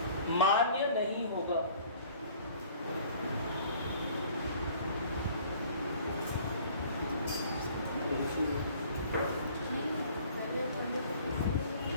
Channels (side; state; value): both; inverted; correlation -0.53